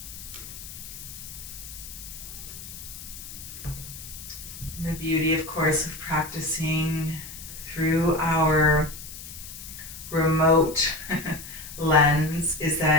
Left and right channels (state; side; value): noise; left; hiss, 12 dB below the sound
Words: beauty, of course, of practicing through our remote lens is